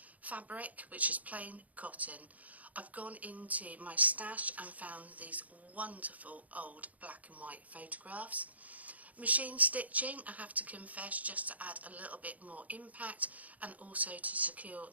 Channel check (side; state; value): left; late; 0.074 ms